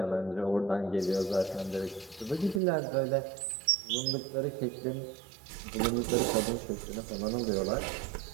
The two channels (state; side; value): drops out; left; at 2.6 s